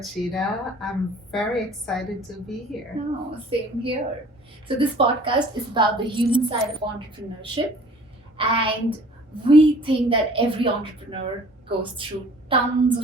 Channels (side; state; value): both; normal; correlation 0.51